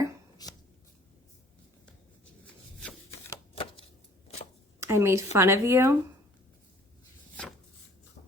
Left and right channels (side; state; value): both; normal; correlation 0.54